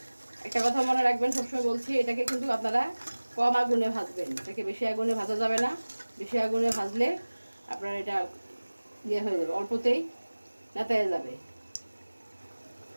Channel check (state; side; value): inverted; both; correlation -1.00